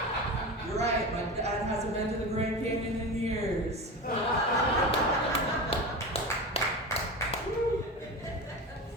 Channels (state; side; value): normal; both; correlation 0.26